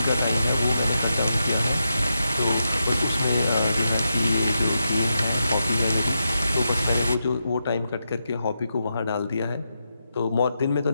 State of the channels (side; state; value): both; inverted; correlation -0.86